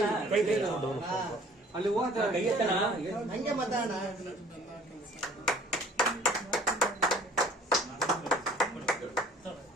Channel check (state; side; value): normal; both; correlation 0.52